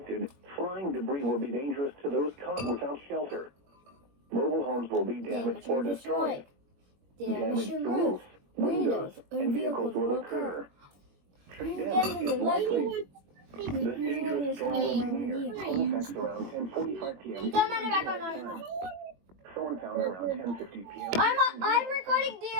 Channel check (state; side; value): late; left; 21 ms